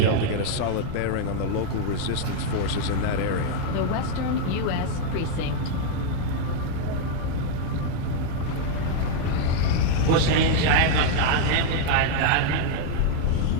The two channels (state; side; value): different; both; correlation 0.00